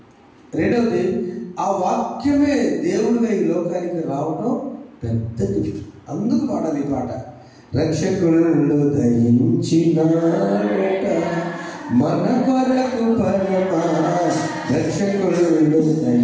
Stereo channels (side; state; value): both; identical; correlation 1.00